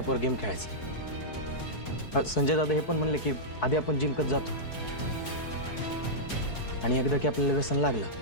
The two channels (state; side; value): late; right; 4.6 ms